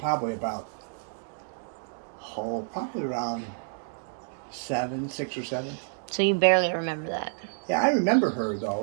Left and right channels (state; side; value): silent; left; digital silence